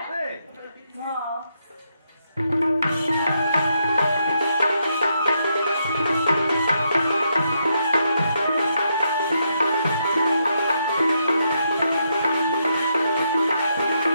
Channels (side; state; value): both; inverted; correlation -0.79